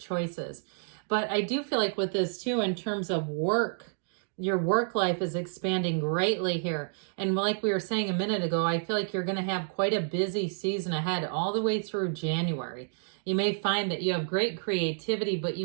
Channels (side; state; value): left; silent; digital silence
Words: choices. But I do feel like with this too, in terms of work, your work life is expanding greatly here. And like we were saying a minute ago, I feel like you're going to have quite a busy season ahead all the way through January. You may find that you have great creativity, but you